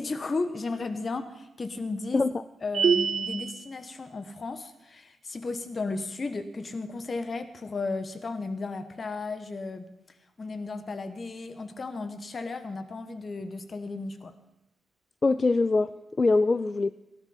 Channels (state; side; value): normal; both; correlation 0.91